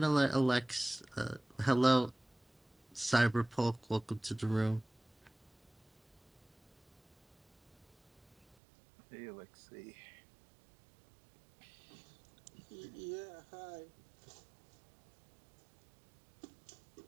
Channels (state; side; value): drops out; left; at 8.6 s